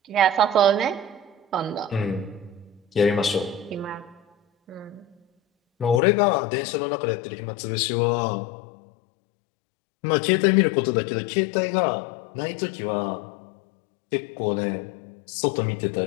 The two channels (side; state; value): right; drops out; at 6.0 s